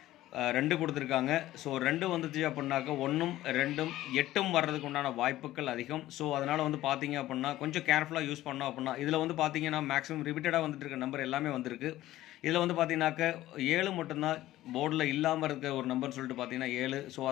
2 கொடுத்துருக்காங்க. ஸோ 2 வந்துச்சு அப்படின்னாக்க 1ம் 2ம் 8ம் வர்றதுக்கு உண்டான வாய்ப்புகள் அதிகம். ஸோ அதனால் வந்து பார்த்தீங்க அப்படின்னா கொஞ்சம் கேர்ஃபுல்லாக யூஸ் பண்ணோம் அப்படின்னா இதில் வந்து பார்த்தீங்கன்னா மேக்ஸிமம் ரிப்பீட்டடாக வந்துட்டு இருக்க நம்பர் எல்லாமே வந்திருக்கு. இதில் வந்து பார்த்தீங்கன்னாக்க 7 மட்டும்தான் போர்டில் இல்லாமல் இருக்க ஒரு நம்பர்னு சொல்லிட்டு பார்த்தீங்கன்னா 7. ஸோ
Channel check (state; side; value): quieter; right; 15.1 dB